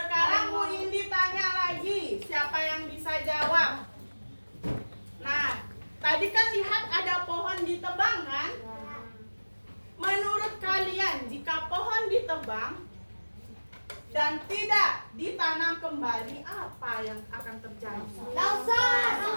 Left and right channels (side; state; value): both; inverted; correlation -1.00